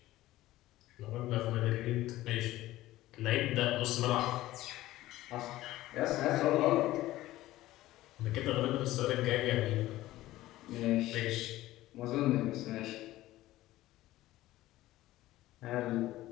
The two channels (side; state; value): right; quieter; 16.1 dB